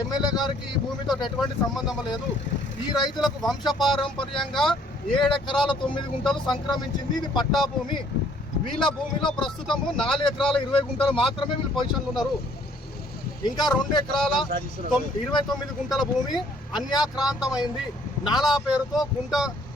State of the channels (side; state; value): both; normal; correlation 0.62